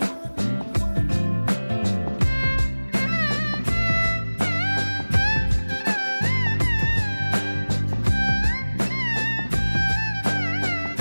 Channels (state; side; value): inverted; both; correlation -1.00